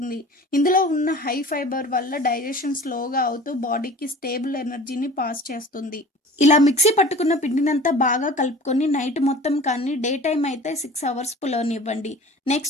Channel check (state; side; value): normal; both; correlation 0.42